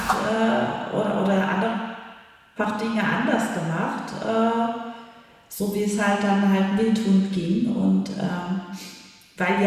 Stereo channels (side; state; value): both; identical; correlation 1.00